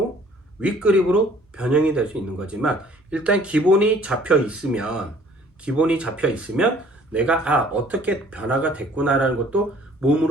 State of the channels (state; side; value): normal; both; correlation 0.56